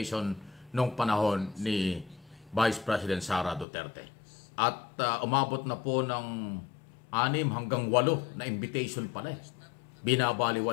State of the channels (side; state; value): right; drops out; at 3.7 s